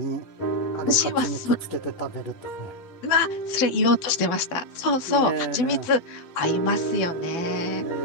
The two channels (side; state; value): right; late; 12 ms